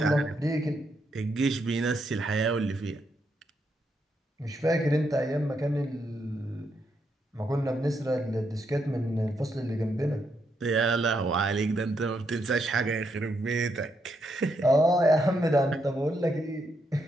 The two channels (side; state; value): both; normal; correlation 0.79